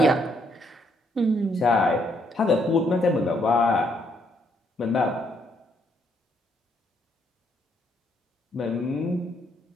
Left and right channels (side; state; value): both; normal; correlation 0.72